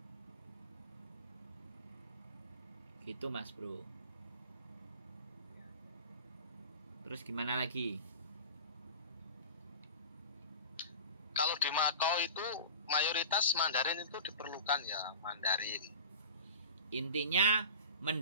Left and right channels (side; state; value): both; inverted; correlation -0.35